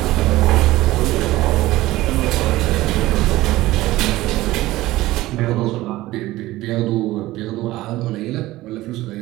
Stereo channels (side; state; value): left; quieter; 17.4 dB